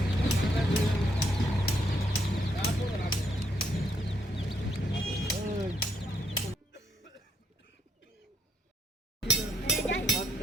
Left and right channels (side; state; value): both; normal; correlation 0.75